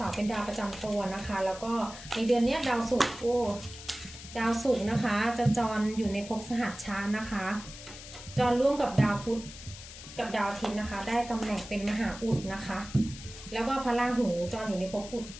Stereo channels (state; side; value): noise; left; hiss, 14 dB below the sound